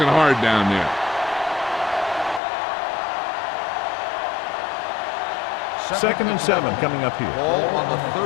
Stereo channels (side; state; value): right; drops out; at 2.4 s